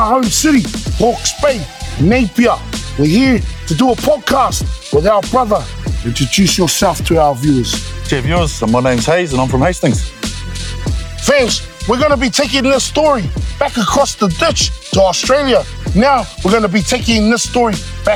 home city, Hawke's Bay, Napier. We're here to do a podcast with our brother. Introduce yourself to our viewers. Dear viewers, my name's Hayes and I'm from Hastings. Fams, we're going to be taking this story back across the ditch to Australia. Now, we're going to be taking this story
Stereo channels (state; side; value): identical; both; correlation 1.00